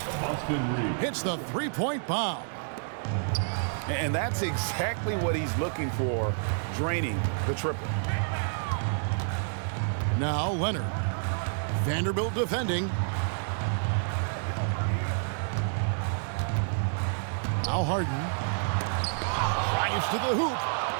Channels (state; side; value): silent; left; 59 dB below the other